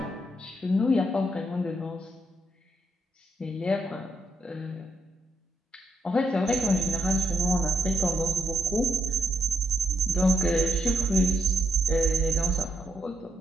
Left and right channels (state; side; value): normal; both; correlation 0.78